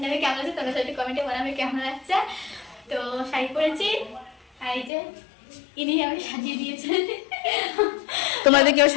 না আমি কেমন আছে, তোমরা সবাই কমেন্টে বলো আমি কেমন লাগছে। তো শাড়ি পরেছি, আর এই যে ইনি আমি সাজিয়ে দিয়েছে। তোমরা যদি কেউ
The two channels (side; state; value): right; drops out; at 4.9 s